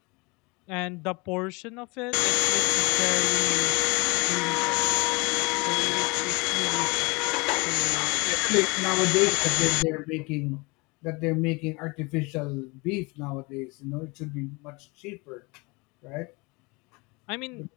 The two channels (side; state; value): right; quieter; 27.1 dB